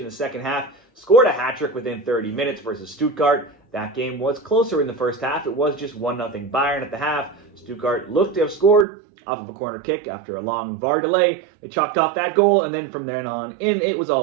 the second half, scored a hat-trick within 30 minutes versus Stuttgart. That game was closer in the first half. It was just 1-0 Bayern at the half. Stuttgart looked to have scored off of a corner kick after a long VAR delay. They chalked off that goal, and then from then on in, it was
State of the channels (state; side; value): drops out; left; at 8.8 s